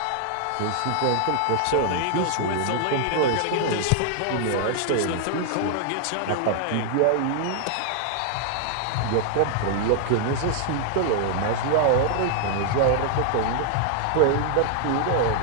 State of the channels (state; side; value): different; both; correlation -0.01